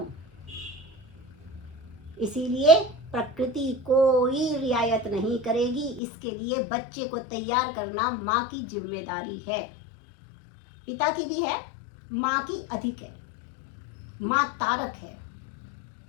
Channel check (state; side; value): drops out; right; at 6.0 s